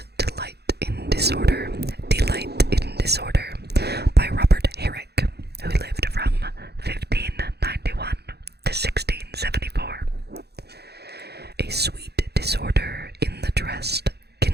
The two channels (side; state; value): left; late; 0.48 ms